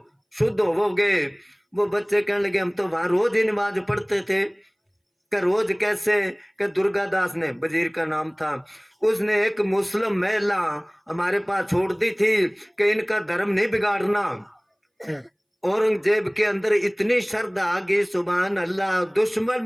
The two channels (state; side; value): identical; both; correlation 1.00